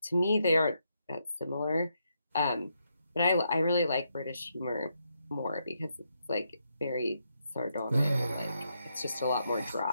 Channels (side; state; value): both; inverted; correlation -0.80